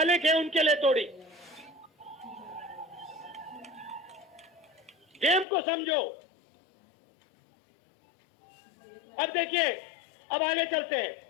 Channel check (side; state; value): right; drops out; at 5.5 s